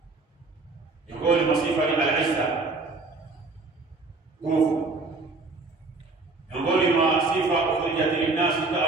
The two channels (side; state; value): left; quieter; 3.6 dB